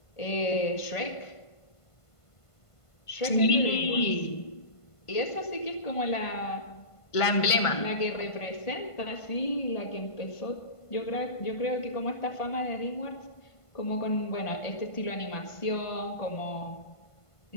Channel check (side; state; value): right; late; 1.5 ms